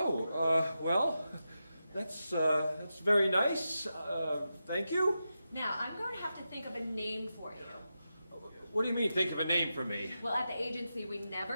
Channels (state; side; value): inverted; both; correlation -0.90